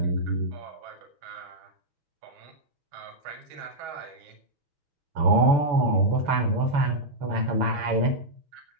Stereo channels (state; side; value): late; left; 7.0 ms